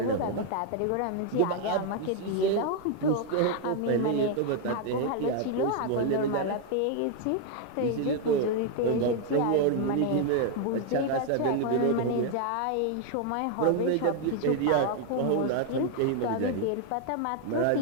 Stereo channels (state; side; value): different; both; correlation 0.00